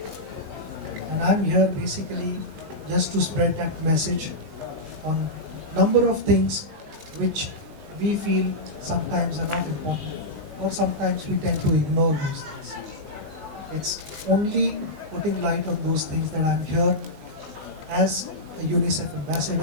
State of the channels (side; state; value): left; late; 19 ms